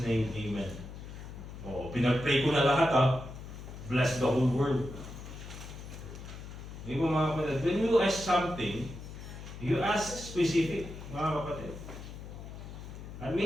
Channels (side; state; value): left; noise; hum, 11 dB below the sound